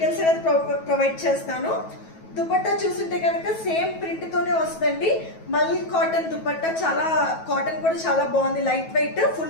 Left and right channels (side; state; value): right; late; 9.2 ms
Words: అనేది ప్రొవైడ్ చేస్తాను. దుపట్టా చూస్తుంటే కనుక సేమ్ ప్రింట్ తోనే వస్తుందండి. మల్ కాటన్ దుపట్టా, చాలా కాటన్ కూడా చాలా బాగుంది. లైట్ వెయిట్,